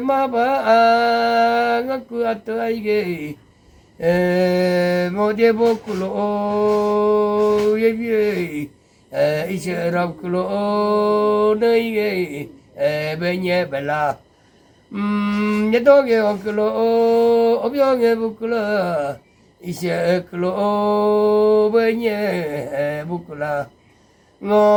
ngaku ataige modie bokulo ye isherab kulo neige benye bela yedoge okulo obyoge bukula ishe kulo benye bukula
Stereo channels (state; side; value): identical; both; correlation 1.00